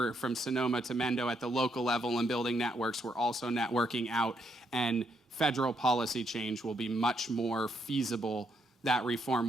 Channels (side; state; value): both; normal; correlation 0.76